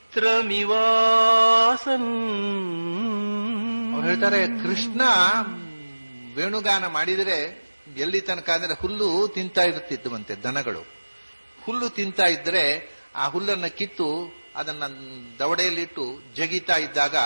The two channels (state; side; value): inverted; both; correlation -1.00